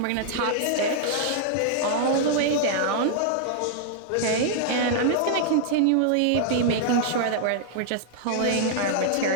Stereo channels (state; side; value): different; both; correlation -0.01